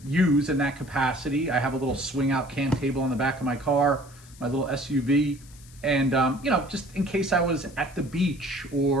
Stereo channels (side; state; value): left; noise; hiss, 23 dB below the sound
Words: use in that capacity. I have a little swing out can table on the back of my car, my little SUV. And, just in case I was at the beach